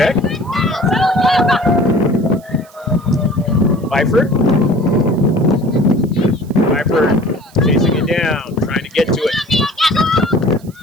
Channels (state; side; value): noise; right; hiss, 27 dB below the sound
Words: Pfeiffer chasing it down, trying to get to it.